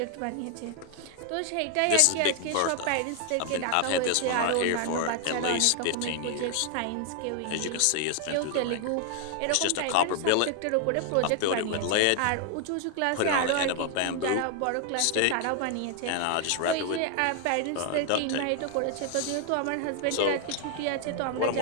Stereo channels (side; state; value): both; different; correlation 0.00